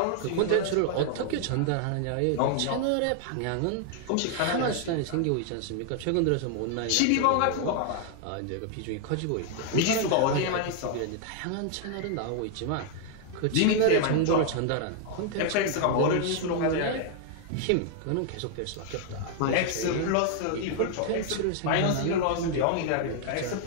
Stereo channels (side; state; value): both; different; correlation 0.00